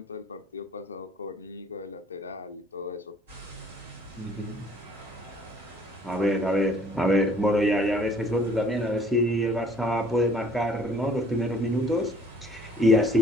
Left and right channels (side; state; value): both; normal; correlation 0.56